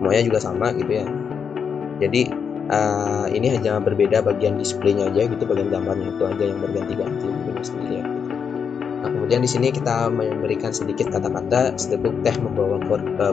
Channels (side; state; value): right; quieter; 6.7 dB